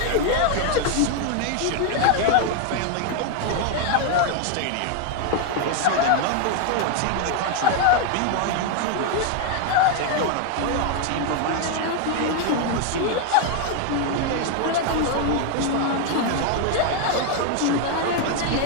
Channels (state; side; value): different; both; correlation 0.01